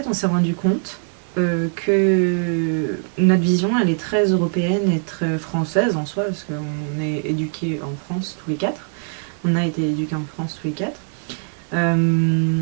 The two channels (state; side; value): silent; left; 59 dB below the other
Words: on s'est rendu compte que notre vision, elle est très européenne et très française en soi, parce qu'on est éduqués en France tous les quatre. On a été éduqués en France tous les quatre.